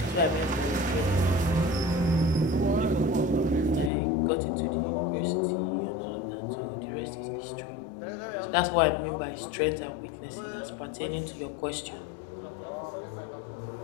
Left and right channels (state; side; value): drops out; right; at 3.9 s